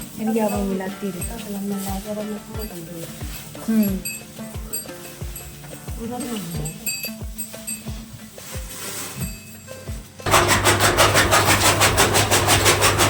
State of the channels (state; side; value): identical; both; correlation 1.00